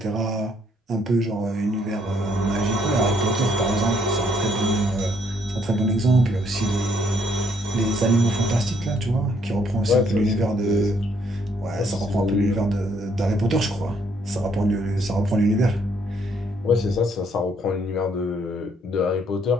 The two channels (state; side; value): normal; both; correlation 0.68